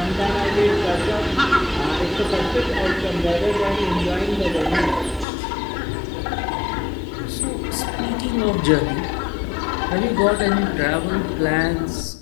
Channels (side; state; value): right; drops out; at 5.2 s